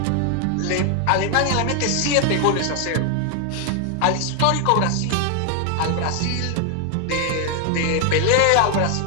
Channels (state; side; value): different; both; correlation 0.00